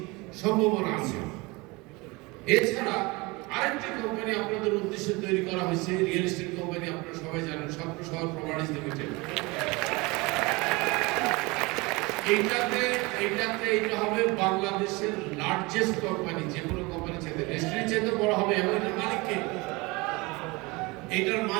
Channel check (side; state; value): left; quieter; 24.9 dB